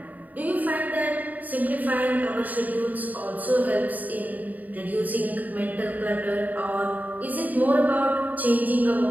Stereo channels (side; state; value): left; late; 0.078 ms